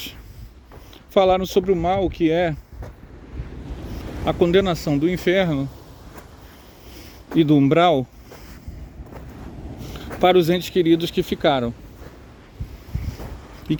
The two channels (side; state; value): both; identical; correlation 1.00